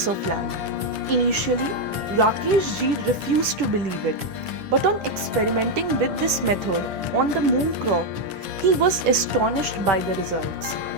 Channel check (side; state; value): left; late; 10 ms